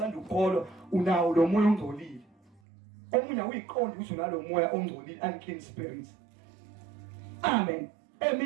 ukholwa unawo lo moya ongcolile. Omunye uyiqonda ukuthi unalo moya ongcolile unclean spirit. Amen.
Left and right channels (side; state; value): left; drops out; at 2.6 s